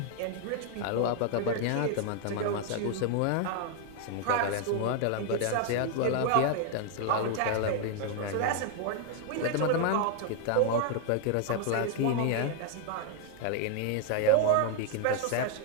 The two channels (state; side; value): different; both; correlation 0.00